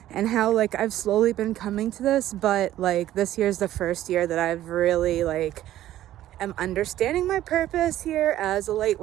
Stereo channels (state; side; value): quieter; left; 13.4 dB